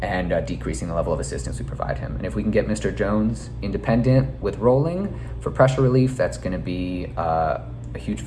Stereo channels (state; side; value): identical; both; correlation 1.00